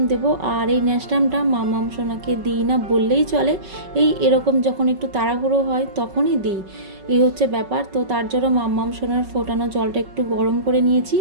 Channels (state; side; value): late; left; 5.3 ms